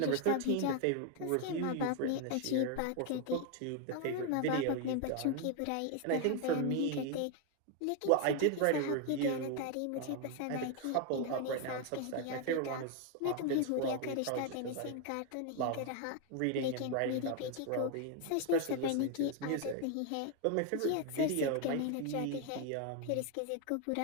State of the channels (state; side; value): different; both; correlation 0.01